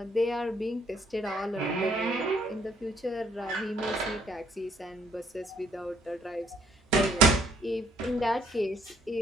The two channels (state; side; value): normal; both; correlation 0.66